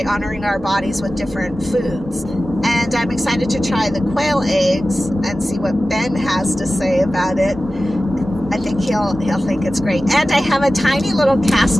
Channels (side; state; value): both; normal; correlation 0.95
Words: honoring our bodies with different foods. And I'm excited to try the quail eggs and see what Ben has to say about it. I think he'll think it's great. And I have a tiny little